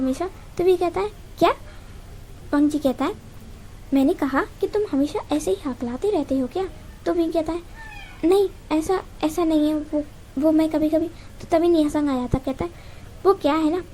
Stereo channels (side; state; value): both; identical; correlation 1.00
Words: तो वी कहता है क्या? वांगजी कहता है मैंने कहा कि तुम हमेशा ऐसे ही हकलाते रहते हो क्या? तो वी कहता है नहीं ऐसा नहीं है, वो मैं कभी कभी। तो तभी निया संग आ जाता, कहता है वो क्या है ना,